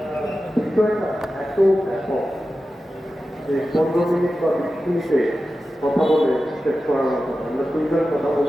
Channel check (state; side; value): normal; both; correlation 0.93